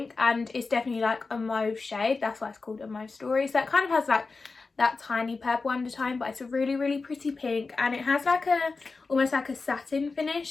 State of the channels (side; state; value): right; quieter; 4.1 dB